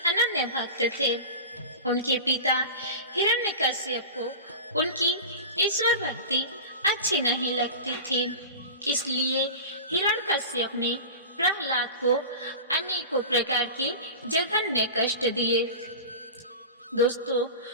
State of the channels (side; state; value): both; inverted; correlation -0.30